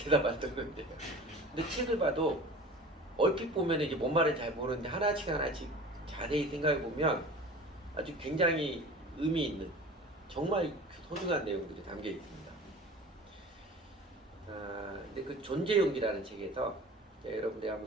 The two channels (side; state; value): both; normal; correlation 0.39